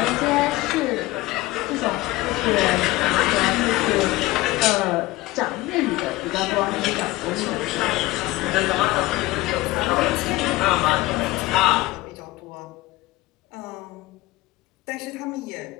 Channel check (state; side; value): quieter; right; 18.8 dB